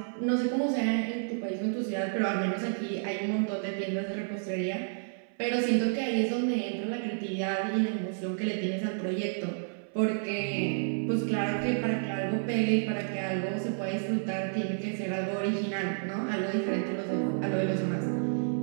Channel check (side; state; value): left; silent; 58 dB below the other